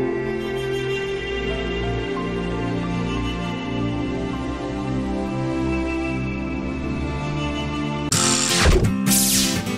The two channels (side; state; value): both; identical; correlation 1.00